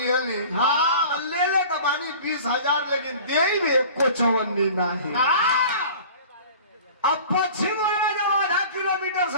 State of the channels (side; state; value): both; inverted; correlation -0.43